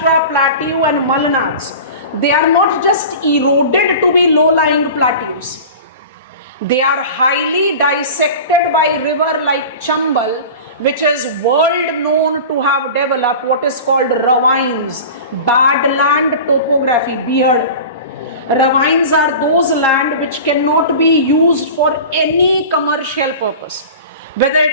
Plateau and Malanads, they are not just eroded to be low-lying plateaus. They are highly dissected by river like Chambal, which is world known to have developed what is called ravines, badland topography, beard. Ravines are those land which cannot be used for any commercial purpose, whether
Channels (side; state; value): both; inverted; correlation -0.35